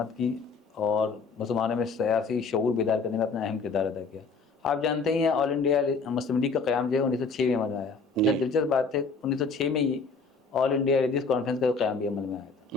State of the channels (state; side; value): quieter; right; 4.4 dB